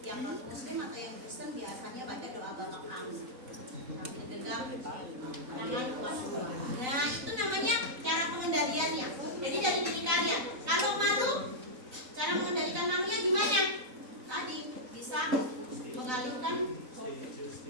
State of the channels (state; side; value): late; left; 3.9 ms